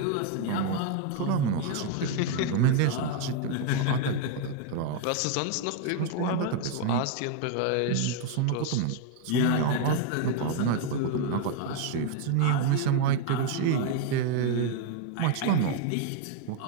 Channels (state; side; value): different; both; correlation 0.01